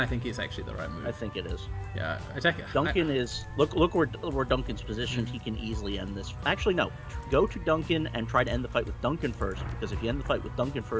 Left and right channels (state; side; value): identical; both; correlation 1.00